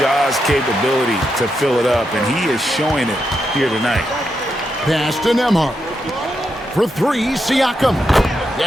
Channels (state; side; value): normal; both; correlation 0.84